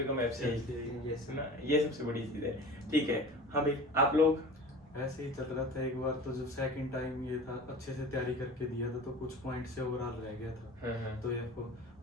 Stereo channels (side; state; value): both; normal; correlation 0.38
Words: कम FCI, Yes, है ना, ये सबसे बड़ी चीज है। ठीक है। हाँ भाई, आप लोग? ऐसे ही चल रहा था। एक बार तो जब सेकंड टाइम ये था, अच्छे से तैयारी करके दिया था, तो कुछ पॉइंट से ओवरऑल रह गया था। तो AFO,